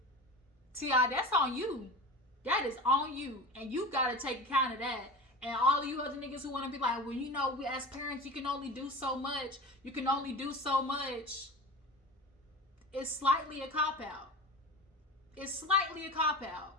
T.I., that's on you. That is on you. And you got to take account of that. And all of you other niggas who want to be like, well, we as parents, you can only do so much. You can only do so much. It's slightly a cop-out. It's slightly a cop-out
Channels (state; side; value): normal; both; correlation 0.32